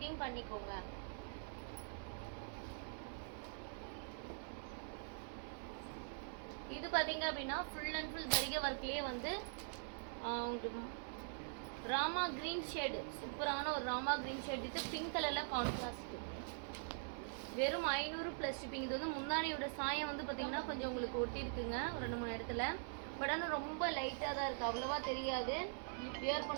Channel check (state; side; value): silent; left; digital silence